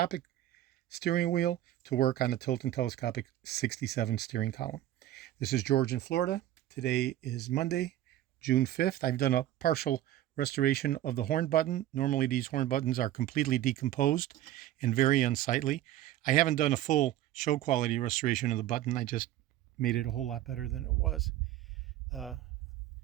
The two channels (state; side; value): quieter; left; 13.5 dB